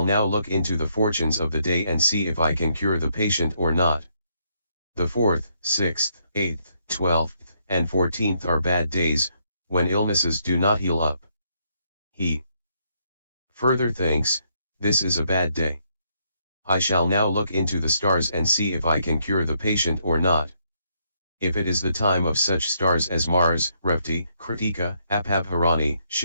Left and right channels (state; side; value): inverted; both; correlation -0.74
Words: now look into the fortunes of the day and see if I can cure the patient or not." The 4th, 6th, 8th, 12th, and 14th are bad days, when illnesses do not heal up. He further thinks, "This is a bad day. I shall now look into the stars and see if I can cure the patient or not. If it is the time of such stars as Mars, Revti, Kritika, Apabharani,